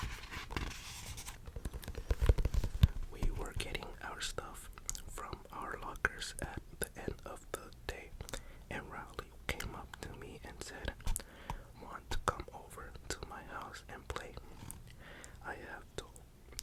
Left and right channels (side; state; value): both; identical; correlation 1.00